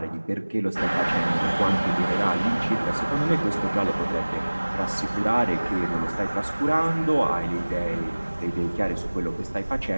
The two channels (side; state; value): both; inverted; correlation -1.00